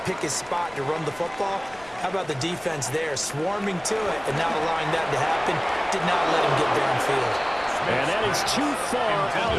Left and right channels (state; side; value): noise; left; rumble, 24 dB below the sound